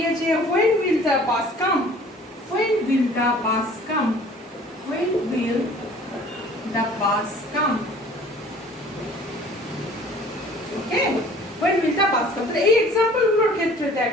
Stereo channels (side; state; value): both; normal; correlation 0.50